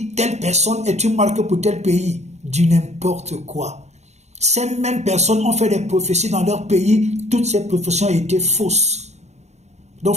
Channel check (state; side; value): late; left; 0.32 ms